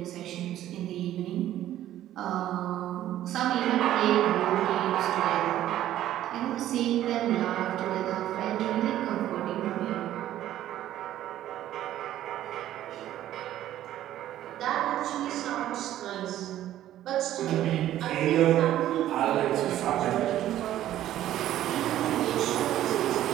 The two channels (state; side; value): quieter; left; 12.8 dB